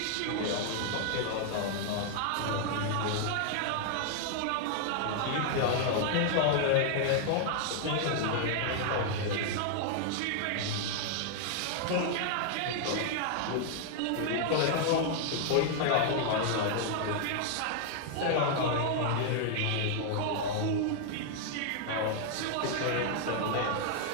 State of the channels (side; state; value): both; different; correlation 0.00